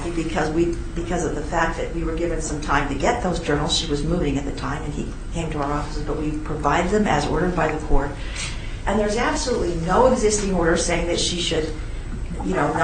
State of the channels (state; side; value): identical; both; correlation 1.00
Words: because of the fact that we were given some time to get those journals. She was moving at the time, and he came to our offices, but we provided them as ordered by the court. And there's absolutely no existing order saying that she should,